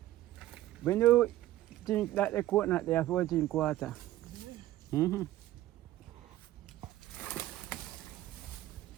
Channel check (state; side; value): quieter; left; 14.9 dB